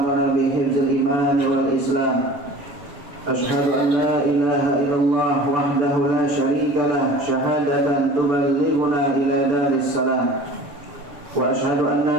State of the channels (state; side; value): late; left; 6.9 ms